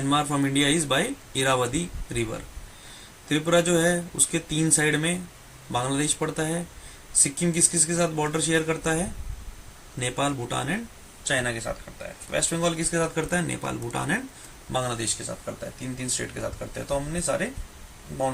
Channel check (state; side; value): identical; both; correlation 1.00